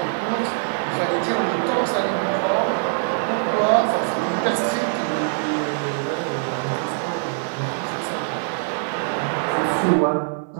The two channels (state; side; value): silent; left; 64 dB below the other